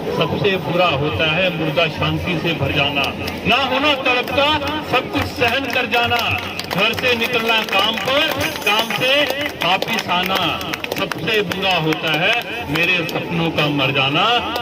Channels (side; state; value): both; identical; correlation 1.00